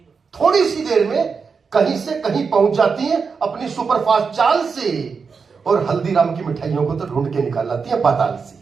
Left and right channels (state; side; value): quieter; left; 5.4 dB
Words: थोड़ी सी देर में कहीं से कहीं पहुंच जाती हैं अपनी सुपरफास्ट चाल से, और हल्दीराम की मिठाइयों को तो ढूंढ के निकाल लाती है पाताल से।